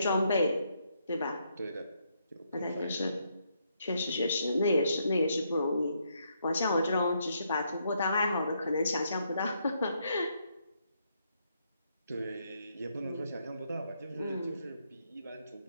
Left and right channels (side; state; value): both; inverted; correlation -0.76